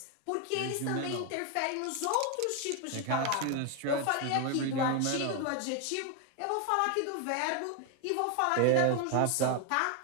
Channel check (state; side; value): different; both; correlation 0.01